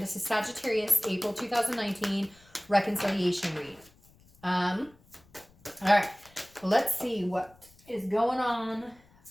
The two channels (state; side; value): noise; left; rumble, 29 dB below the sound